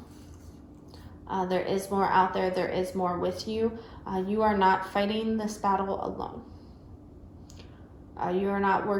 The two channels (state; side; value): identical; both; correlation 1.00